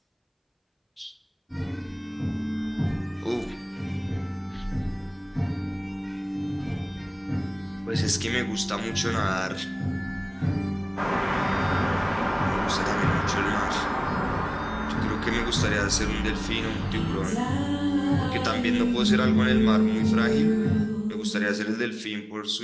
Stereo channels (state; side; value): identical; both; correlation 1.00